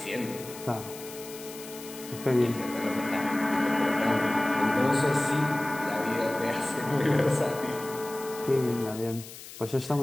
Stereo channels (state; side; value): noise; left; hiss, 14 dB below the sound